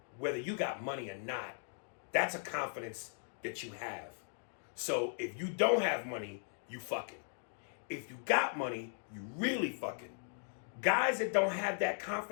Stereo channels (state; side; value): silent; right; digital silence